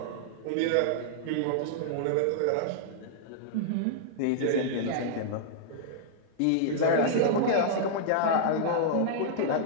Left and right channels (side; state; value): both; different; correlation -0.01